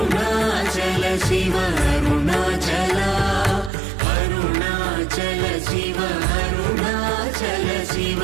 శివ అరుణాచల అరుణాచల శివ అరుణాచల శివ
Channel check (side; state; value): left; drops out; at 3.7 s